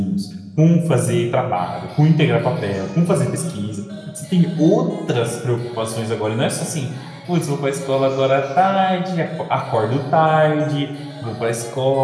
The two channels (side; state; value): both; identical; correlation 1.00